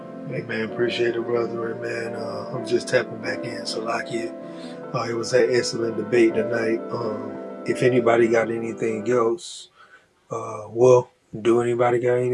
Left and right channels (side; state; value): both; identical; correlation 1.00